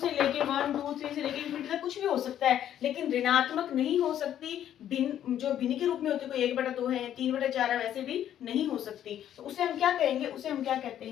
लेके 1 2 3 से लेके इंफिनिटी तक कुछ भी हो सकता है, लेकिन ऋणात्मक नहीं हो सकती। भिन्न जो भिन्न के रूप में होती है, कोई 1/2 है, 3/4 है, वैसे भी नहीं हो सकती। तो उसे हम क्या कहेंगे, उसे हम क्या कहते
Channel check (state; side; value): quieter; right; 10.8 dB